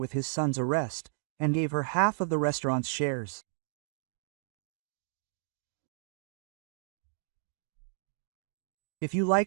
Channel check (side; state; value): left; silent; digital silence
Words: his son's arrest, and gave her half of the restaurant's shares. If you